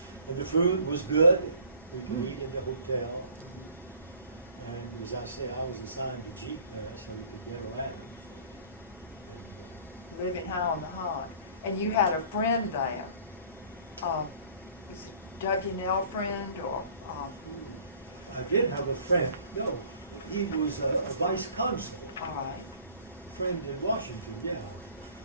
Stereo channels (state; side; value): inverted; both; correlation -0.51